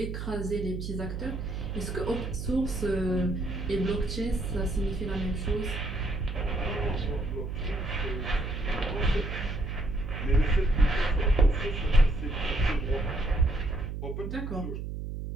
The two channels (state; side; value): noise; right; hum, 5 dB below the sound